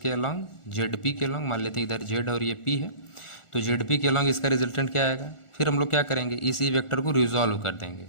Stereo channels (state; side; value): late; right; 1.4 ms